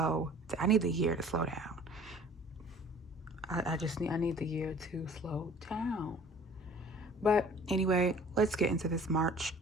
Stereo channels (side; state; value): both; normal; correlation 0.49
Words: I need the year to slow down. I need the year to slow down. But anyway, let's get into this March